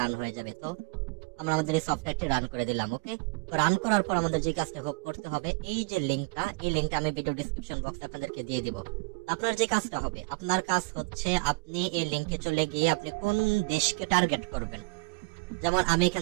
রান হয়ে যাবে। তো আমরা আমাদের এই সফটওয়্যারটি রান করে দিলাম। ওকে, তো রান করার পর আমাদের যে কাজটা করতে হবে, এই যে লিংকটা, এই লিংকটা আমি ভিডিও ডেসক্রিপশন বক্সে আপনাদেরকে দিয়ে দিব। আপনার যে কাজটা হবে, আপনার কাজ হচ্ছে আপনি এই লিংকে চলে গিয়ে আপনি কোন দেশকে টার্গেট করবেন। যেমন আমি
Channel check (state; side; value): quieter; left; 26.5 dB